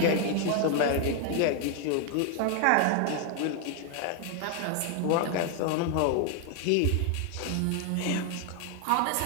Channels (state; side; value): different; both; correlation 0.00